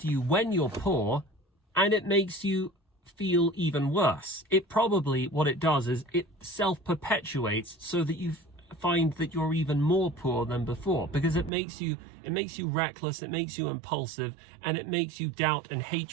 you when you're poor, and it makes you feel even worse. It probably, what it does is it self-perpetuates so that you find that you're even more poor than before, because it makes you reckless, it makes you impulsive, and it makes you doubt and hate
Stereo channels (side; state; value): left; drops out; at 11.5 s